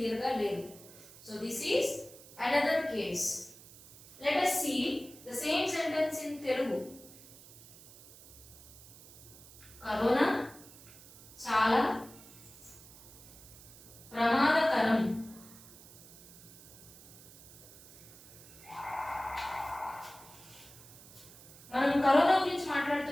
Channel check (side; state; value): right; noise; hiss, 20 dB below the sound